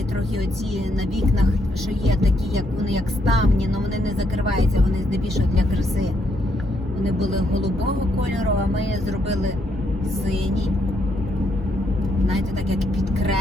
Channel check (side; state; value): both; normal; correlation 0.75